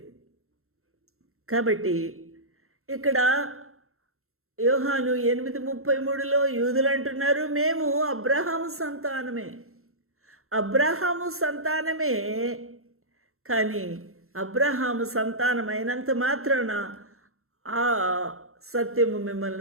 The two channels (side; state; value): left; late; 0.62 ms